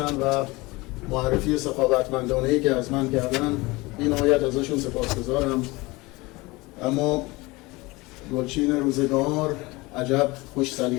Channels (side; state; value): right; quieter; 22.7 dB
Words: و معرفی سخاوتمندانه‌ای که از من کردن. بی نهایت ازشون سپاسگزارم. اما گلچین روزگار عجب خوش